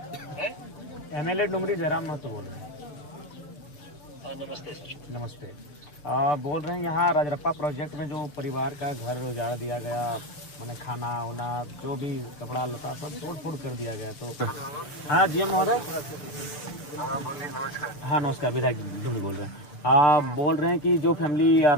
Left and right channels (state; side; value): late; right; 6.8 ms